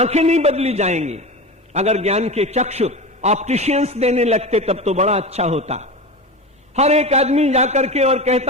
नहीं बदली जाएंगी। अगर ज्ञान के चक्षु ऑप्टिशियंस देने लगते तब तो बड़ा अच्छा होता। हर एक आदमी जाकर के और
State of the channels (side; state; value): both; normal; correlation 0.26